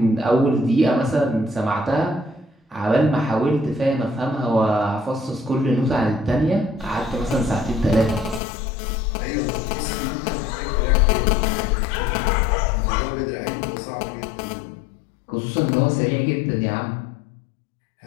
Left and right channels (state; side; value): drops out; right; at 8.4 s